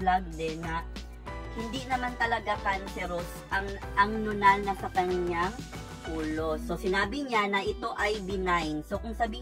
din na hindi naman talaga cancerous ang nunal na sa kanyang ulo. So, sinabi niya na ito ay benign. So, kung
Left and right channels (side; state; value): both; identical; correlation 1.00